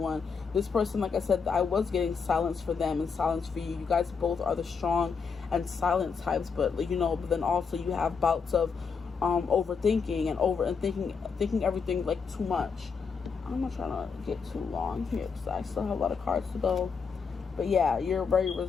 This person, like I said, I was getting silence for them and silence for you. You guys both are the strong and silent types, but but then also you have bouts of overthinking and thinking everything like too much. I'm not trying to get too long here, because I still have a lot of cards to go. But yeah, you're very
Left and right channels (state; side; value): quieter; right; 5.7 dB